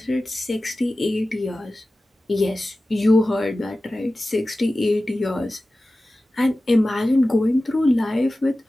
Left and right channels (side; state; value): both; normal; correlation 0.96